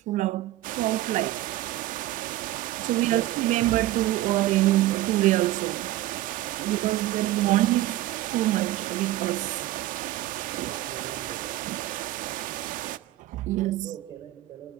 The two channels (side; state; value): left; quieter; 15.7 dB